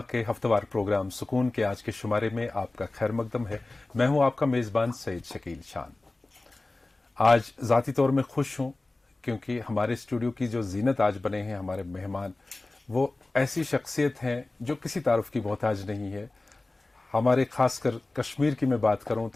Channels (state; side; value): quieter; right; 3.0 dB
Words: के हफ्तेवार प्रोग्राम सुकून के आज के शुमारे में आपका खैर मकदम है। मैं हूं आपका मेजबान सईद शकील शान। आज जाती तौर में खुश हूं क्योंकि हमारे स्टूडियो की जो जीनत आज बने हैं हमारे मेहमान, वो ऐसी शख्सियत हैं जो किसी तारुफ की मोहताज नहीं है। हमारे खासकर कश्मीर की मैं बात करूं